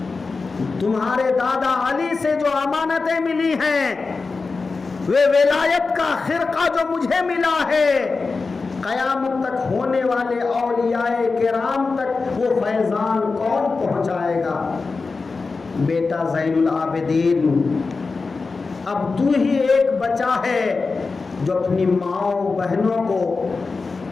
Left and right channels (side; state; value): right; quieter; 4.2 dB